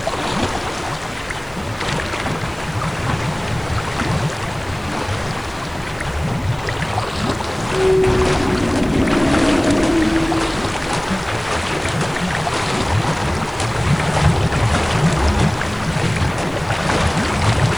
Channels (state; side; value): noise; right; hiss, 25 dB below the sound